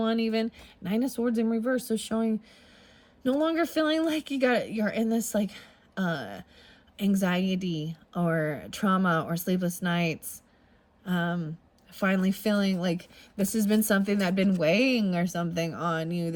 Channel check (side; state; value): both; identical; correlation 1.00